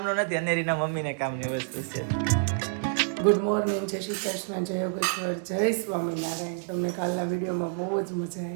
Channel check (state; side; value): silent; left; digital silence